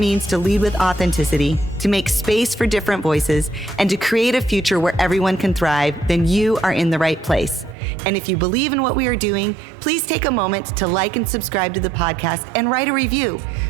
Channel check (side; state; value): left; drops out; at 7.8 s